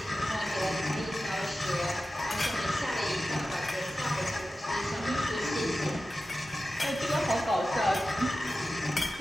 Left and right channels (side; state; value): both; normal; correlation 0.94